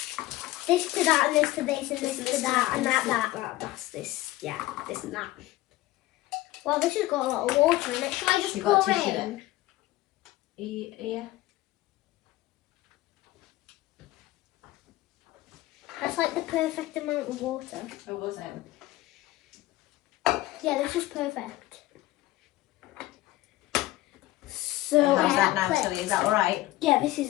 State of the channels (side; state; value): right; quieter; 17.4 dB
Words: This to that, and this to this, and this to that, and that. That's this. Yeah, this and that. Well, this has got a lot of water in it. Shall I just You got pour tissue in? there? Yeah. That's like the perfect amount of water. Oh, was it? Yeah, this is perfect. So How's that now, clips. Tilly? Is that all right? yeah, this